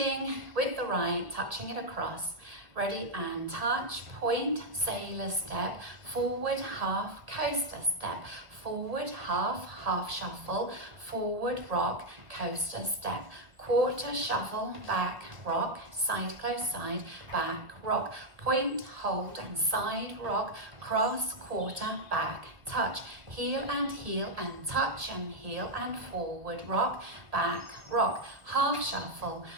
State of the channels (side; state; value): left; late; 1.5 ms